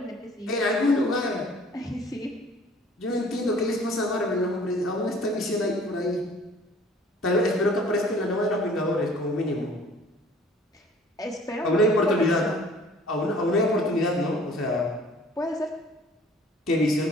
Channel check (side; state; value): both; normal; correlation 0.52